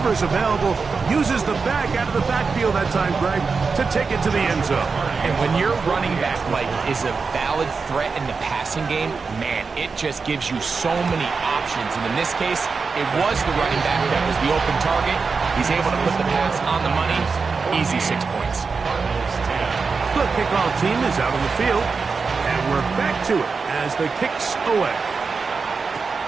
available, uses the back out of the backfield that time, Greg, to take it to the end zone. And when your running back, Mike, is a valid threat in the passing game, man, it just gives you so many options. And in this case, it was the running back that was the open target. He's able to put the pass on the money. Easy 6 points. The kickoff team is out on the field, and we're back to it as the kicks away.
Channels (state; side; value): quieter; left; 4.8 dB